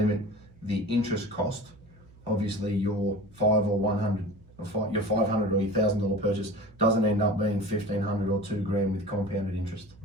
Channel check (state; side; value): noise; right; hum, 25 dB below the sound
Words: the interest cost, obviously your $500 or your $500 or your $1,000 purchase doesn't end up being $1,500 or $2,000 with compounded interest.